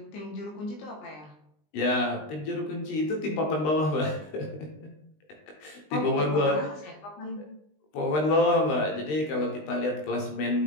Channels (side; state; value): right; late; 20 ms